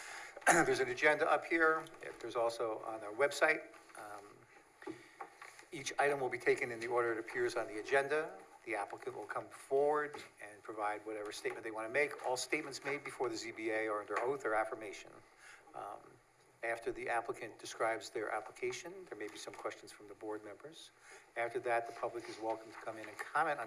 There's an agenda up here. There's also on our website. Each item will be taken in the order it appears on the agenda. The applicant will come forward and provide whatever statement they want to make. All statements made before the ZBA are under oath or affirmation. After the applicant describes their application, there may be some questions from the board members. After that, the public is welcome to come in and comment on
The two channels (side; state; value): both; identical; correlation 1.00